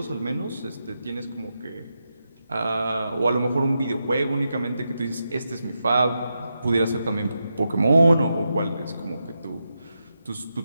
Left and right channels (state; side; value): inverted; both; correlation -0.87